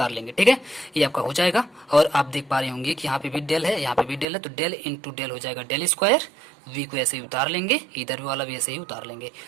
लेंगे। ठीक है, ये आपका हो जाएगा। और आप देख पा रहे होंगे कि यहाँ पे भी डेल है, यहाँ पे भी डेल है, तो डेल इंटू डेल हो जाएगा डेल स्क्वायर, वी को ऐसे ही उतार लेंगे, इधर वाला भी ऐसे ही उतार लेंगे,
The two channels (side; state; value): left; drops out; at 4.2 s